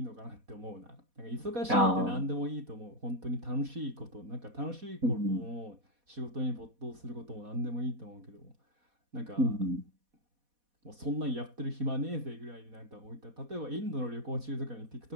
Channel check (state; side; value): late; left; 4.1 ms